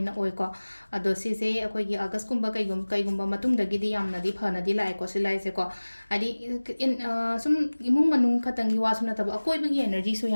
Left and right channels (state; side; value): inverted; both; correlation -1.00